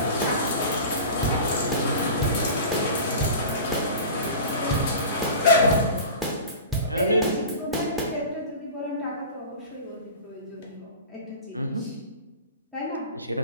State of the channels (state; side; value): inverted; both; correlation -0.34